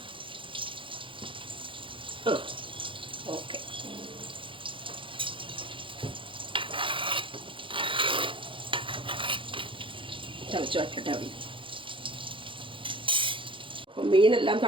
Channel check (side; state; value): left; late; 0.25 ms